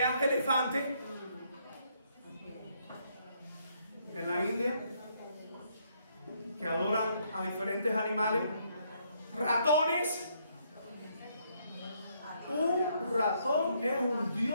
elefantes. En la India, que adoran a diferentes animales, ratones. Un ratón es un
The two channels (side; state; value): both; inverted; correlation -0.71